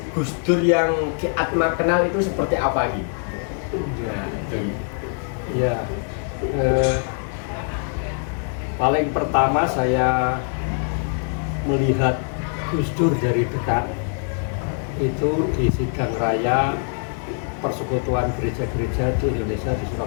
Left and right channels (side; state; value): right; silent; 57 dB below the other